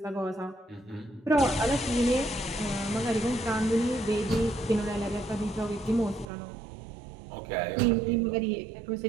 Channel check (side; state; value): left; drops out; at 6.3 s